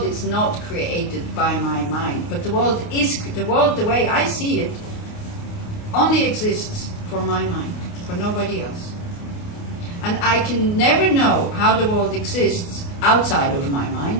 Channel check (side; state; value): right; late; 29 ms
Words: is not created by my mind, but the world, the way I see it, only exists for my mind, for nobody else. And I can never know how the world exists outside of my